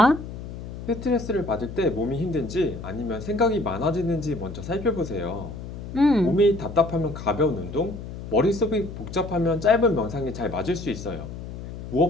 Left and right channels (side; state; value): left; noise; hum, 10 dB below the sound